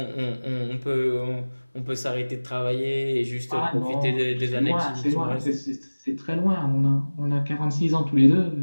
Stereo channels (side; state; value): both; inverted; correlation -1.00